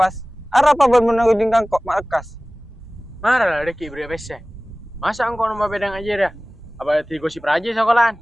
Ada apa ben menunggu kok makas? Marah lah deki beri pese. Masa engkau numpak peda ngajar ya? Apa tigo si praja sekolahan?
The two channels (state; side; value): normal; both; correlation 0.98